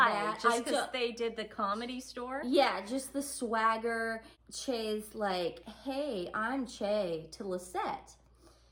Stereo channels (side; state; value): both; identical; correlation 1.00